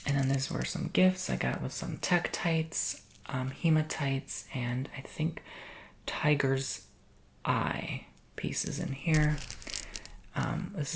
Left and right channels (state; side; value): identical; both; correlation 1.00